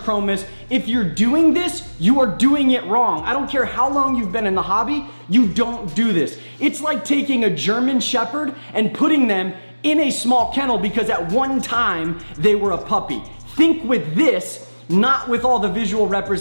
If you're doing this, you are doing it wrong. I don't care how long you've been in the hobby, you don't do this. It's like taking a German Shepherd and putting them in a small kennel because at one time they were a puppy. Think with this, not with all the visual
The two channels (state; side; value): inverted; both; correlation -1.00